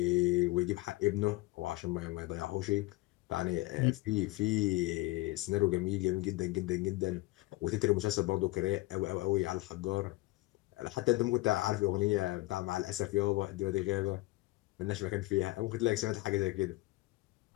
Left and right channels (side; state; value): right; quieter; 20.2 dB